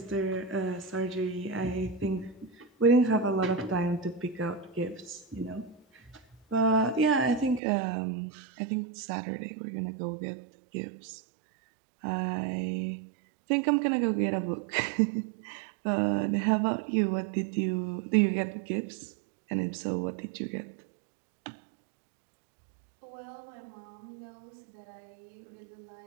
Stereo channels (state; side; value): drops out; left; at 7.6 s